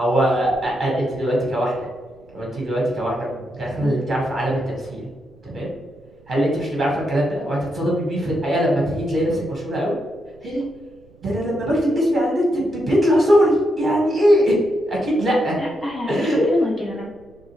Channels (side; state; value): right; noise; rumble, 28 dB below the sound